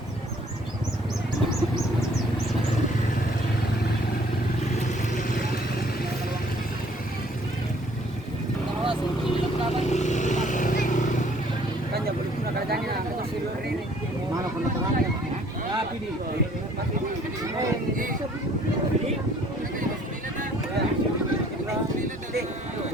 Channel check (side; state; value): both; normal; correlation 0.59